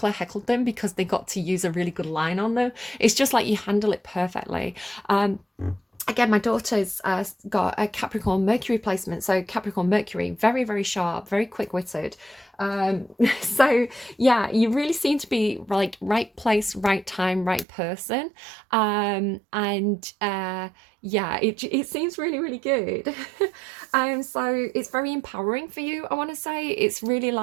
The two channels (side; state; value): left; drops out; at 17.7 s